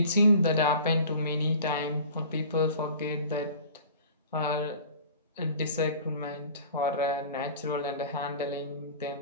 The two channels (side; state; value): both; inverted; correlation -0.43